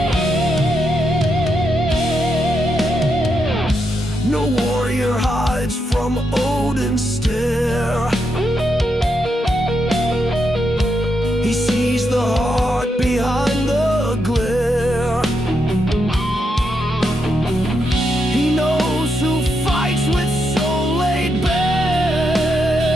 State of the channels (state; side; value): normal; both; correlation 0.82